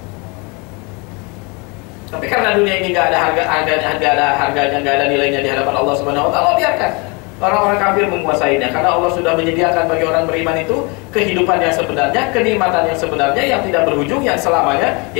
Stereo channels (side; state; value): right; quieter; 29.9 dB